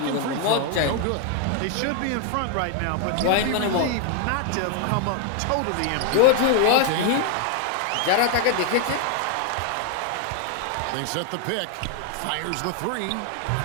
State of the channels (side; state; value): both; different; correlation 0.00